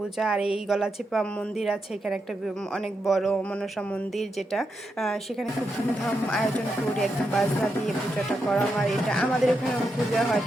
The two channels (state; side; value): normal; both; correlation 0.84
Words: আর এই গলাচিপা মন্দির আছে এখানে একটা অনেক বড় মনসা মন্দির যেটা সেখানে খুব ধুমধাম আয়োজন করে একদম বাজনা দিয়ে পূজাটা করা হয়। এটা আমাদের ওখানে পূজা হয়